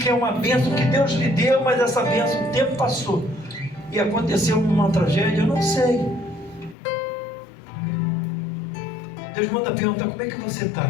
é uma bênção que Deus lhe deu, mas essa bênção, o tempo passou e aconteceu uma tragédia, eu não sei. Deus manda perguntar, como é que você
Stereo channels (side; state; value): right; drops out; at 6.8 s